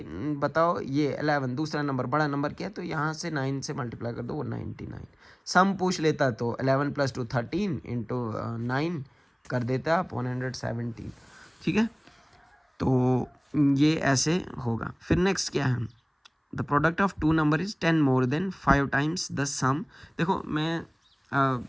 बताओ ये 11 दूसरा नंबर बड़ा नंबर क्या है, तो यहाँ से 9 से मल्टीप्लाई कर दो, वो 99। सम पूछ लेता तो 11 + 2 13 × 9 कर देता आप 117, ठीक है। तो ये ऐसे होगा। फिर नेक्स्ट क्या है, the product of two number is 10 more than 5 times the sum. देखो मैं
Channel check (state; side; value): identical; both; correlation 1.00